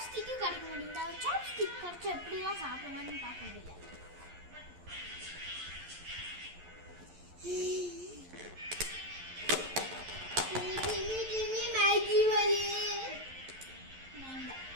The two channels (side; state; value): left; late; 11 ms